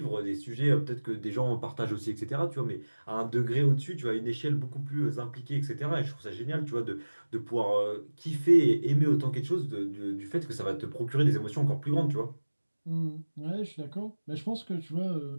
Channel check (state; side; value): inverted; both; correlation -1.00